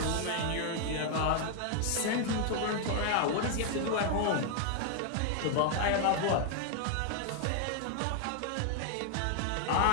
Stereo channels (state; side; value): different; both; correlation 0.00